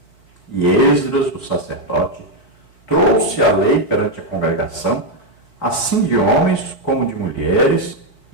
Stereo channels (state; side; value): late; right; 4.2 ms